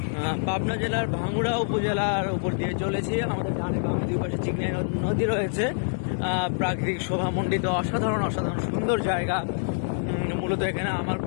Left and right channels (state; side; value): silent; right; digital silence